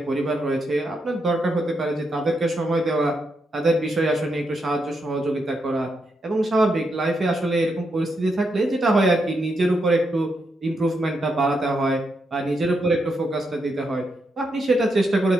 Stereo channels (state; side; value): normal; both; correlation 0.82